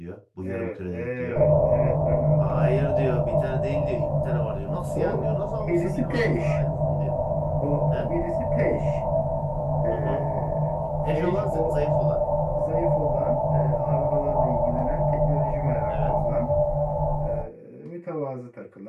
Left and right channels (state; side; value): identical; both; correlation 1.00